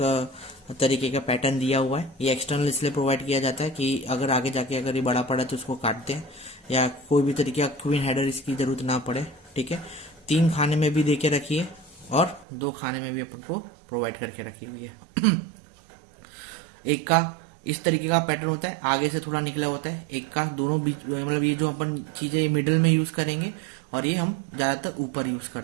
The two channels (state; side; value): drops out; left; at 12.5 s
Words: तरीके का पैटर्न दिया हुआ है। ये एक्सटर्नल इसलिए प्रोवाइड किया जाता है कि अगर आगे जाके अगर ये बड़ा पड़ा तो उसको काटते हैं, या कोई भी तरीके का क्वीन हेडर इसकी ज़रूरत ना पड़े। ठीक है, 3 खाने में भी दे के रखी है और 2 खाने में भी अपन को प्रोवाइड करके रखी हुई है। एक का इस तरीके का पैटर्न होता है, आगे से थोड़ा निकला होता है। एक का दोनों बीच, मतलब ये जो अपन चीज़ें मिडिल में यूज़ करेंगे, और ये हम ज़्यादातर ऊपर यूज़